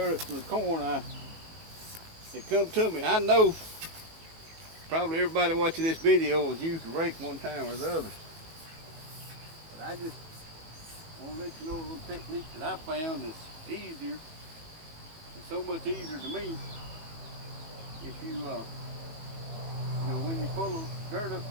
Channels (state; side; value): late; left; 19 ms